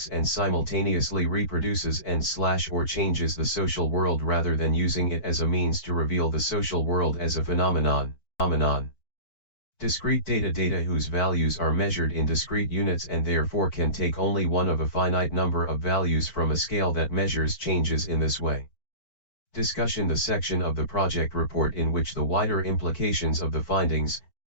and simultaneously reproduces and/or changes the social world rather than using it as a means to reveal the social world as a phenomenon. Discrete data, data whose values are measured in discrete units and therefore can take only one of a finite number of values from a scale that measures changes in this way. Discussion, the section of the project report in which the wider implications of the findings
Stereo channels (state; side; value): late; right; 4.5 ms